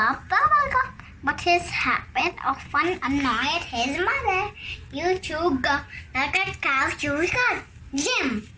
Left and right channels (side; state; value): both; identical; correlation 1.00